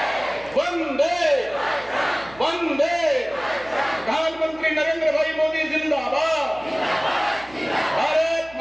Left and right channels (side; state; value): right; noise; hum, 23 dB below the sound